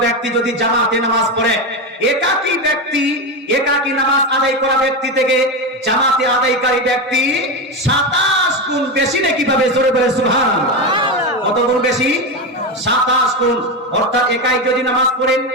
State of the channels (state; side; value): normal; both; correlation 0.15